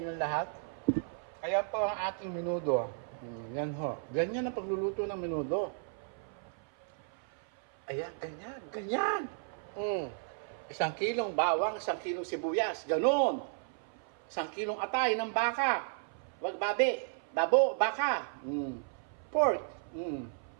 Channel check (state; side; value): silent; left; 55 dB below the other